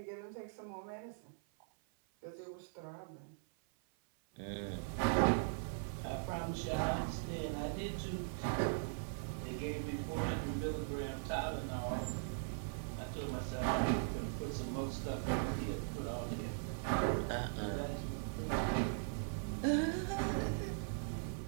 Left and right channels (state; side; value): silent; left; 51 dB below the other